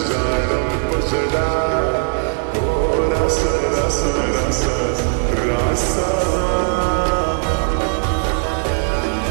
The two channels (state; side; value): silent; left; 60 dB below the other